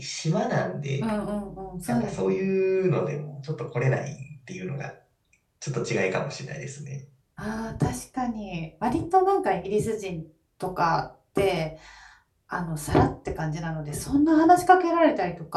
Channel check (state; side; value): identical; both; correlation 1.00